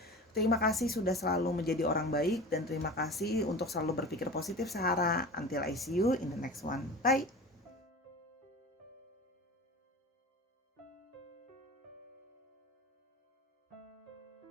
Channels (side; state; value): both; normal; correlation 0.34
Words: Terima kasih sudah selalu menjadi orang baik dan terima kasih untuk selalu berpikir positif, Sahara. Until I see you in the next one. Bye.